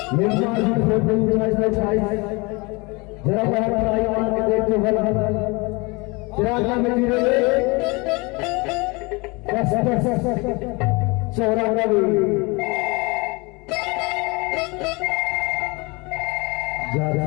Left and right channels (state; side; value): quieter; right; 26.8 dB